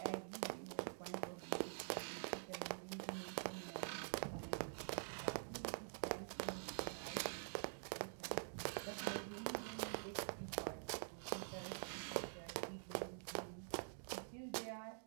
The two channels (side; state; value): left; silent; digital silence